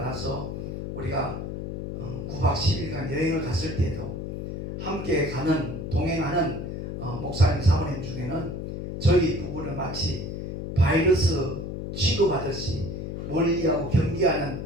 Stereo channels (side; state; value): left; noise; hum, 6 dB below the sound